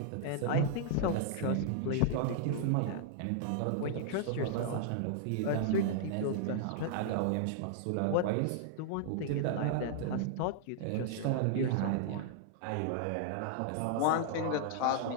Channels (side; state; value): both; different; correlation -0.01